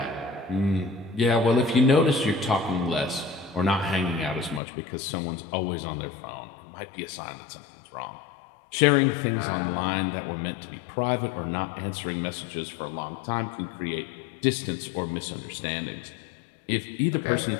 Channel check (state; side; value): drops out; right; at 4.6 s